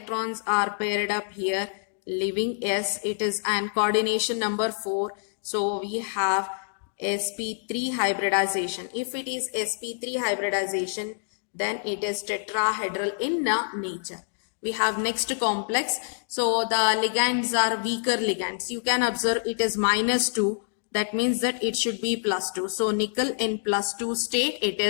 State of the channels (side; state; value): right; silent; digital silence